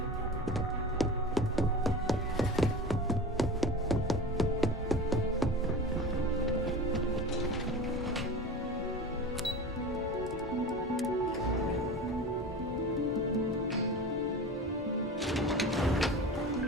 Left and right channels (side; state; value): both; normal; correlation 0.32